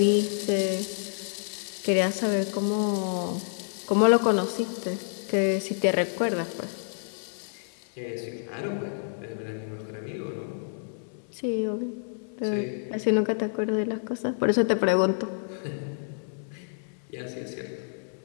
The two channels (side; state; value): right; silent; 59 dB below the other